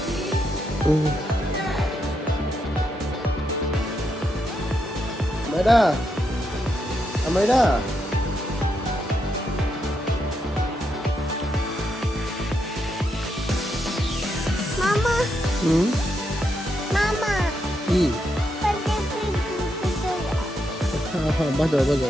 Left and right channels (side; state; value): both; normal; correlation 0.81